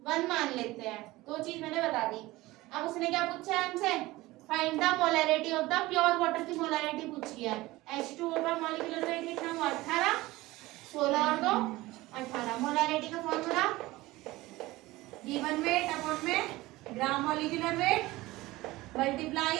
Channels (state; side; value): quieter; left; 19.1 dB